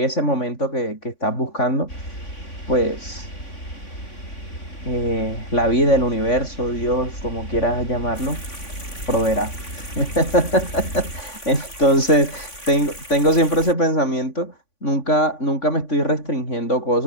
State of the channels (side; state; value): right; late; 3.5 ms